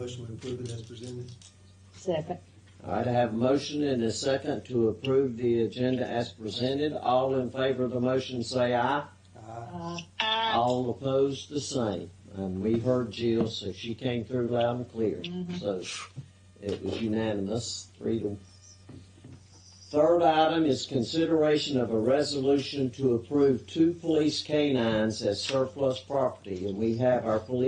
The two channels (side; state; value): both; identical; correlation 1.00